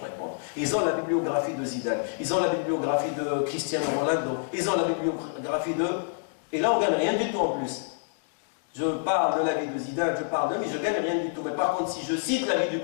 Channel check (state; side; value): silent; right; digital silence